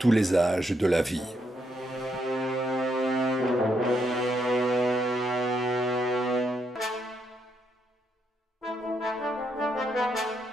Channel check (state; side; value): normal; both; correlation 0.77